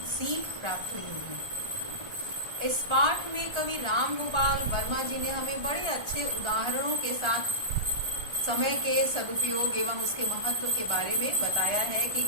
सीख प्राप्त हुई होगी। इस पाठ में कवि राम गोपाल वर्मा जी ने हमें बड़े अच्छे उदाहरणों के साथ समय के सदुपयोग एवं उसके महत्व के बारे में बताया है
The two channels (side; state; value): left; late; 1.3 ms